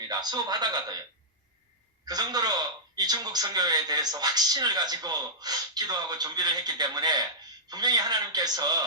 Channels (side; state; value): both; normal; correlation -0.12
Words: 수업하다가도요. 그 정도로 이 중국 선교에 대해서 확신을 가지고 기도하고 준비를 했기 때문에 분명히